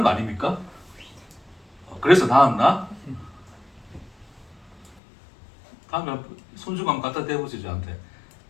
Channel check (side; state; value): right; drops out; at 5.0 s